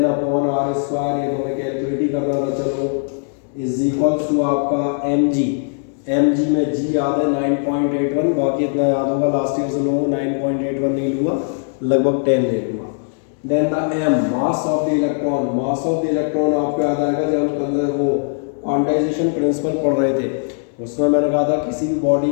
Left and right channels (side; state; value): right; silent; 66 dB below the other